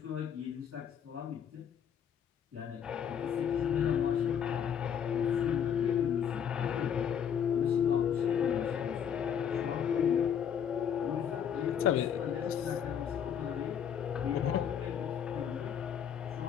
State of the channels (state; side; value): quieter; right; 8.3 dB